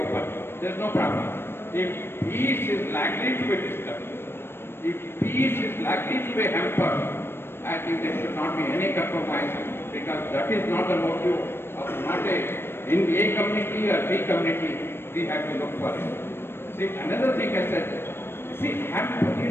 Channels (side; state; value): right; late; 0.11 ms